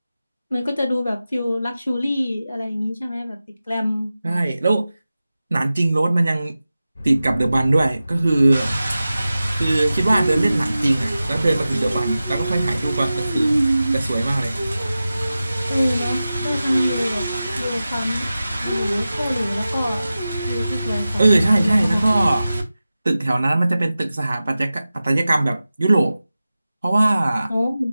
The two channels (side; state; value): both; inverted; correlation -0.95